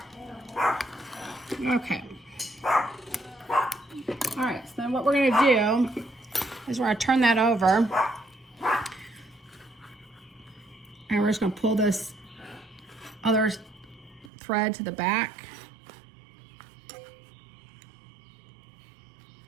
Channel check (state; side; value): drops out; left; at 14.3 s